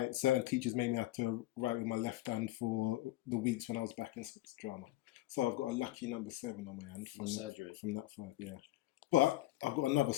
Certain teachers made me have to write with my left hand for the weeks when I was back in sports drama. So I've got a lucky number 7 on my hand from surgery. From that fight, yeah. But I've got another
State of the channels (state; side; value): quieter; right; 16.1 dB